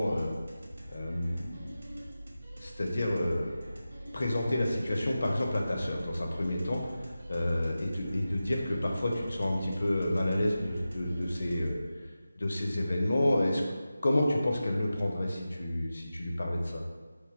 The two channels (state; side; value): inverted; both; correlation -0.94